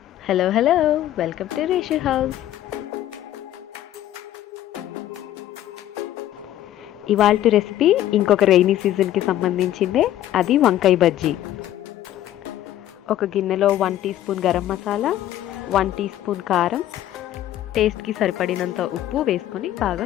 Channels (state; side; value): quieter; right; 12.8 dB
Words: Hello welcome to Reshu house. ఇవాల్టి recipe ఇంకొక rainy సీజన్కి సంబంధించిందే, అది వంకాయ బజ్జీ. ఒక గిన్నెలో 1 teaspoon garam masala, 1 teaspoon కారం, టేస్ట్కి సరిపడినంత ఉప్పు వేసుకొని బాగా